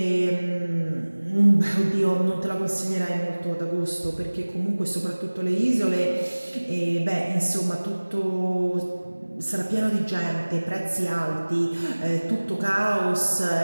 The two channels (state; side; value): inverted; both; correlation -1.00